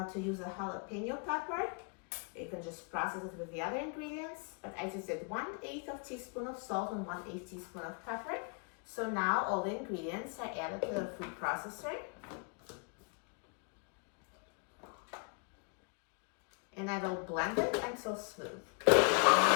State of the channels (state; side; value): quieter; right; 37.3 dB